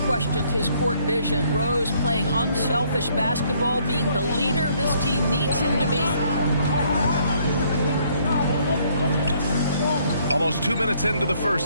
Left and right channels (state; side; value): inverted; both; correlation -0.66